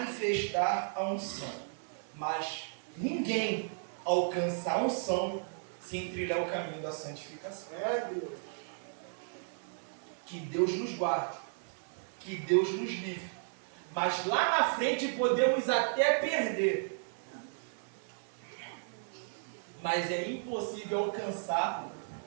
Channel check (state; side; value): silent; left; 55 dB below the other